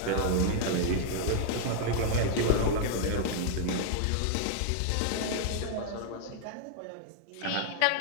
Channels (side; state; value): both; different; correlation 0.00